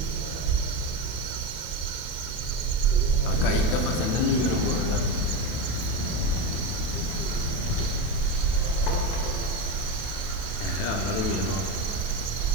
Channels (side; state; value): right; late; 22 ms